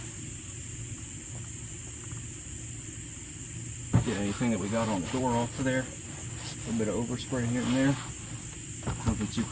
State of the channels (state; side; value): identical; both; correlation 1.00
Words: Get anything that we got on the door off of there. A little bit of overspray here and there. Nothing too